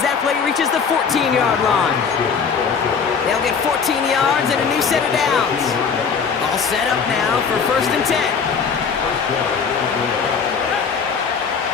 that play reaches the 14-yard line. They'll get 14 yards and a new set of downs. All set up now for 1st and 10.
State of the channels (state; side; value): quieter; right; 6.0 dB